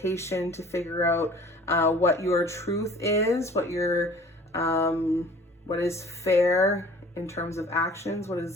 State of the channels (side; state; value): both; normal; correlation 0.49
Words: to figure out what your truth is, what is fair in terms of actions, what